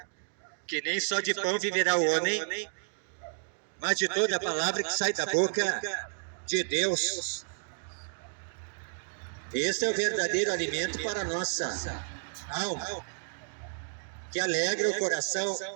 que nem só de pão viverá o homem, mas de toda a palavra que sai da boca de Deus. Este é o verdadeiro alimento para a nossa alma, que alegra o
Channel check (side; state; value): left; silent; digital silence